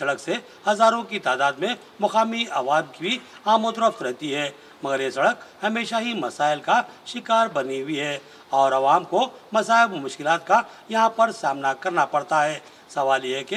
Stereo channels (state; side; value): identical; both; correlation 1.00